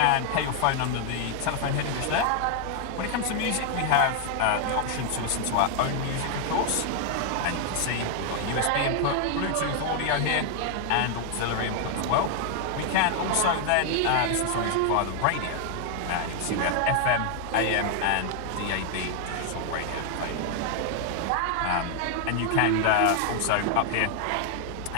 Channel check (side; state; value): both; different; correlation 0.00